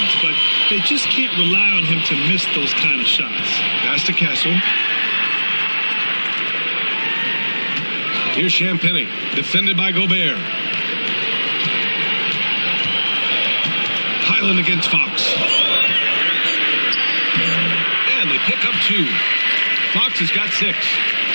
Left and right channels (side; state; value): both; inverted; correlation -1.00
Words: but they just can't rely on him to miss those kind of shots. Pass to Castle. Here's Champagny, defended by Gobert. Highland against Fox. And they pick up 2. Fox has got 6.